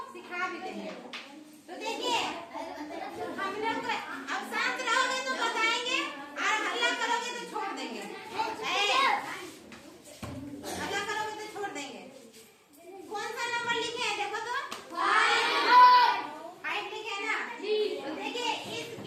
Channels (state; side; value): identical; both; correlation 1.00